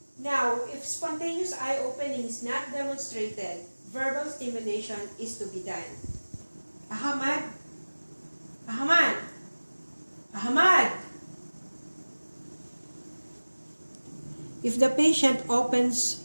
Now, if spontaneous eye opening is not demonstrated, verbal stimulation is to be done. Ahmad! Ahmad! Ahmad! If the patient opens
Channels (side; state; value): both; inverted; correlation -1.00